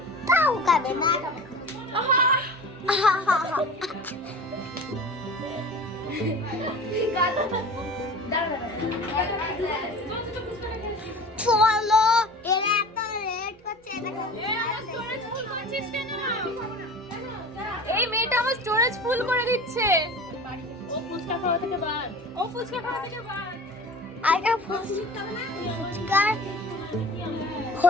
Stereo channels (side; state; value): both; normal; correlation 0.38